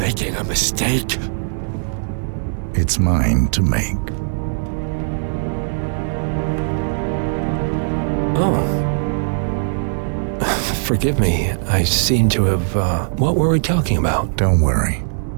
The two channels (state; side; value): silent; left; digital silence